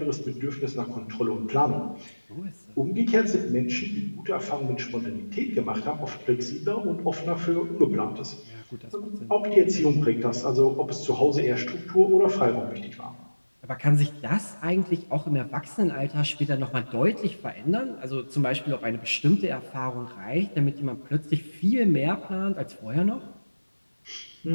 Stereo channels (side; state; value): both; inverted; correlation -1.00